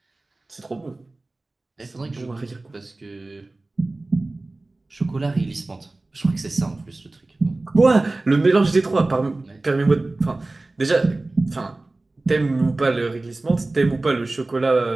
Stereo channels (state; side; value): quieter; left; 3.0 dB